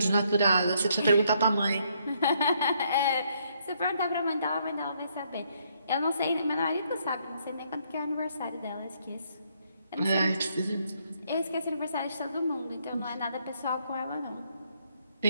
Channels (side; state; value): both; inverted; correlation -0.71